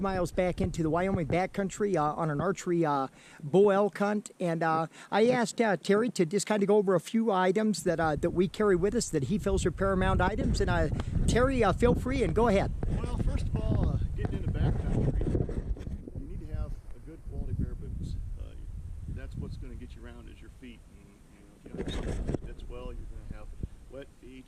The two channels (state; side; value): identical; both; correlation 1.00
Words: miles back into the Wyoming backcountry on an archery bull elk hunt, and I asked Terry to just kind of go over a few items that we carry with us that he feels are paramount items. And Terry, feel free and go ahead. Well, first of all, getting into backcountry, you need to have a good quality pair of boots. That's what's going to get you around is your feet. And, if you don't have something that fits well, you're going to have wet feet.